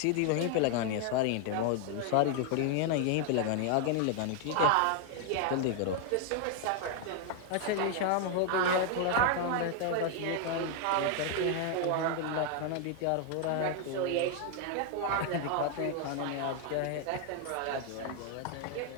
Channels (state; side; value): different; both; correlation 0.00